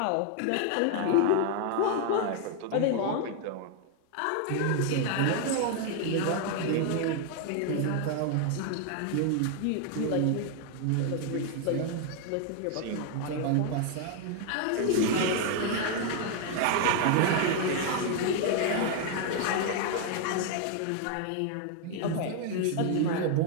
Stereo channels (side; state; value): both; different; correlation 0.00